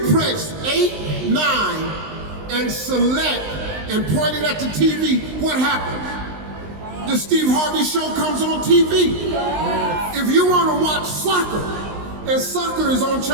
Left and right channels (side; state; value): left; late; 19 ms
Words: press 8, 9, and select and point it at the TV, what happens? The Steve Harvey Show comes on TV. If you want to watch soccer, and soccer is on